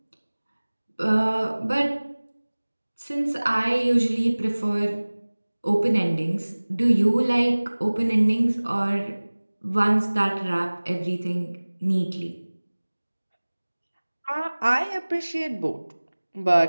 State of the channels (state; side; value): inverted; both; correlation -1.00